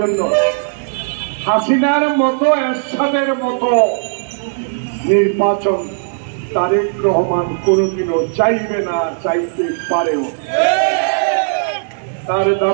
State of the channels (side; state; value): left; silent; 69 dB below the other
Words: জন্য। হাসিনার মতো, এরশাদের মতো নির্বাচন তারেক রহমান কোনোদিনও চাইবে না, চাইতে পারেও। তার